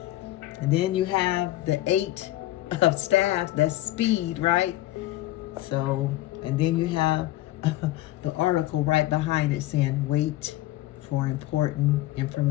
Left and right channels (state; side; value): quieter; right; 15.8 dB